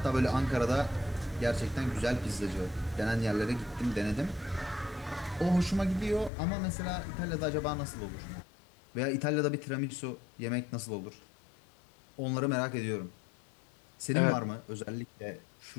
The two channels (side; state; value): right; drops out; at 6.3 s